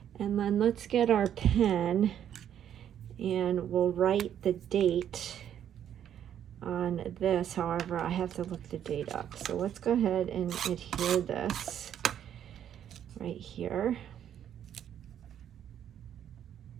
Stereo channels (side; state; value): left; quieter; 9.9 dB